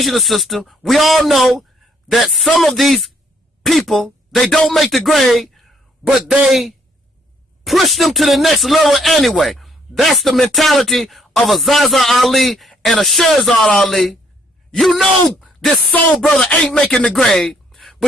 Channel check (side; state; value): both; normal; correlation 0.66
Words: system, we all know that some of these people, they don't make the grade, but they push them to the next level anyway. That's the mentality of a Zaza Ali and a Sherzad Ali. You know this soul brother ain't making the grade,